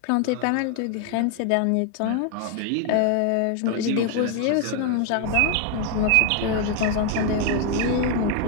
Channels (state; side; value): different; both; correlation 0.01